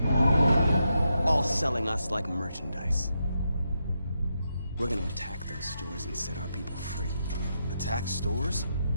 all selling us like merchandise. We're gonna attack those stores and set our people free. Attack stores?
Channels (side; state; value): both; inverted; correlation -0.83